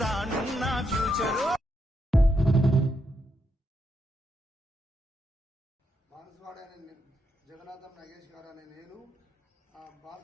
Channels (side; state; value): both; normal; correlation 0.81